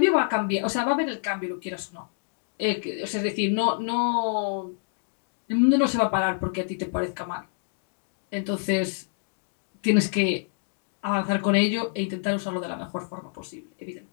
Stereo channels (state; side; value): silent; right; digital silence